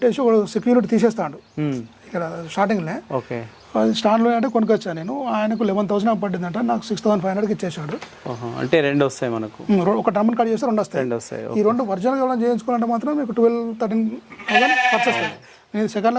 ఒక సెక్యూరిటీ తీసేస్తాడు ఇక్కడ స్టార్టింగ్లో. అది స్టాండ్లో అంటే కొనుక్కొచ్చాను నేను. ఆయనకు 11,000 పడిందంట, నాకు 6,500కి ఇచ్చేసాడు. అంటే 2 వస్తాయి మనకు. ఒక టర్మ్ కట్ చేస్తే 2 వస్తాయి. ఈ 2 ఒరిజినల్గా ఎవరైనా చేయించుకోవాలంటే మాత్రం మీకు 12-13,000 ఖర్చు వస్తుంది. నేను సెకండ్లో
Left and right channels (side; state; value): both; identical; correlation 1.00